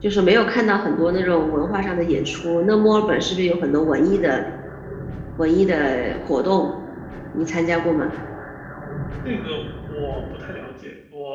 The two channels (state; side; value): identical; both; correlation 1.00